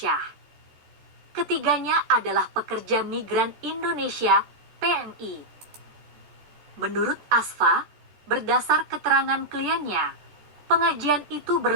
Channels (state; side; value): late; left; 14 ms